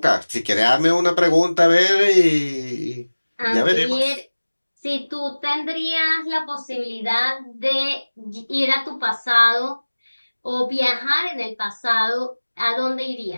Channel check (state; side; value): inverted; both; correlation -1.00